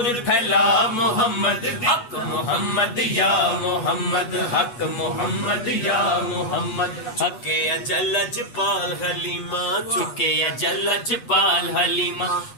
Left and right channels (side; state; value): right; late; 8.2 ms